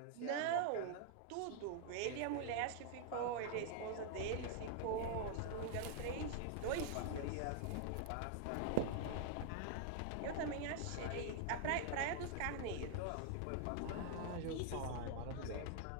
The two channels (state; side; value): different; both; correlation 0.00